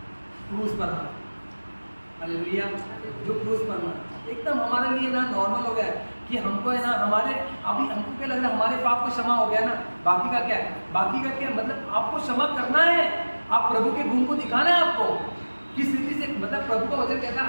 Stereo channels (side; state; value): both; inverted; correlation -1.00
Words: क्रूस पर था। हालेलुया। जो क्रूस पर था एकदम हमारे लिए ना नॉर्मल हो गया है कि हमको है ना हमारे अभी हमको क्या लग रहा है हमारे पाप को क्षमा हो गया ना, बाकी का क्या है? बाकी का क्या मतलब आपको क्षमा करना है। आप प्रभु के गुण को दिखाना है आपको किस रीति से। मतलब प्रभु का वचन कहता है